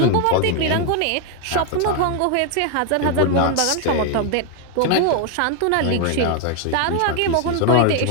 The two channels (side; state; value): both; different; correlation 0.01